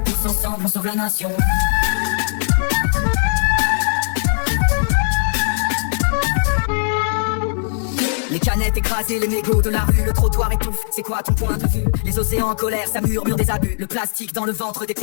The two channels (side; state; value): right; silent; 67 dB below the other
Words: Tous ensemble, on sauve la nation. Les canettes écrasées, les mégots de la rue, le trottoir étouffe, c'est quoi ton point de vue? Les océans en colère, ça murmure des abus. Le plastique dans le ventre des